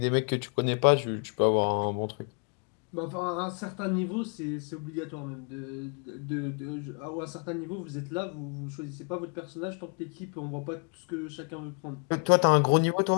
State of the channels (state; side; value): quieter; right; 38.6 dB